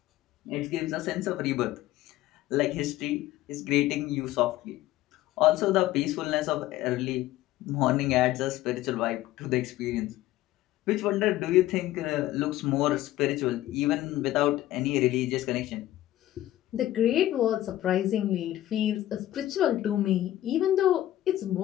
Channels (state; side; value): quieter; right; 14.5 dB